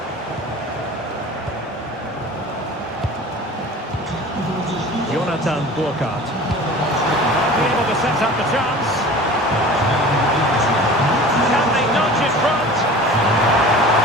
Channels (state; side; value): normal; both; correlation 0.40